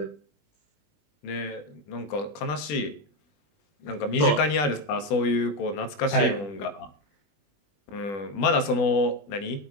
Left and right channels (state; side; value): late; right; 20 ms